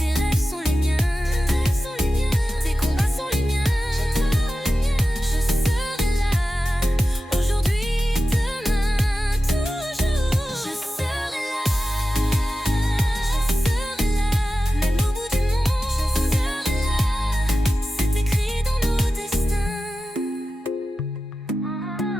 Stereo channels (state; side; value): normal; both; correlation 0.93